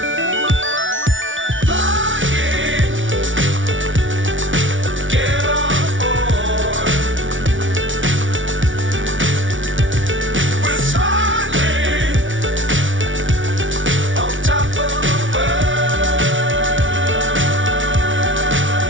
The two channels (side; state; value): left; late; 0.56 ms